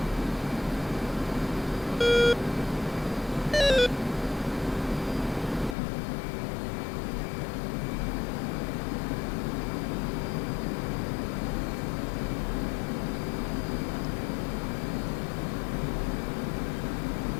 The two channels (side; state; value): right; drops out; at 5.8 s